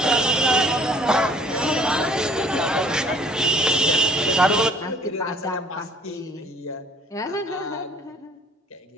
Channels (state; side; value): normal; both; correlation 0.55